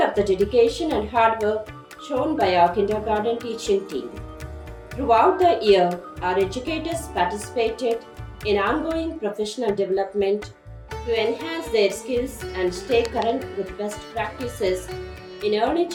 of the dedication and hard work shown by our kindergarten teaching team. Throughout the year, our educators participated in ongoing professional development to enhance their skills and stay current with best practices in early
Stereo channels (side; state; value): both; identical; correlation 1.00